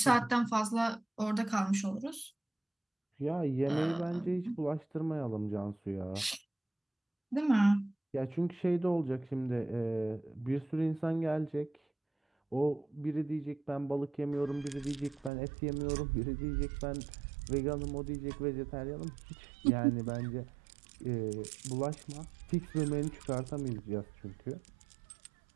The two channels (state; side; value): drops out; left; at 15.3 s